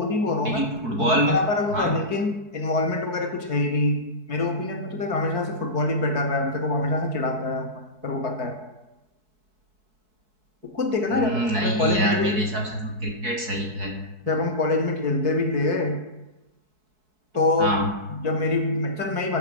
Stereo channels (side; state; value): left; late; 4.6 ms